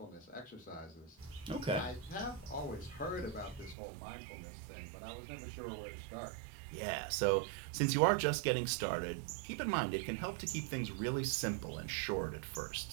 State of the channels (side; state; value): left; drops out; at 3.8 s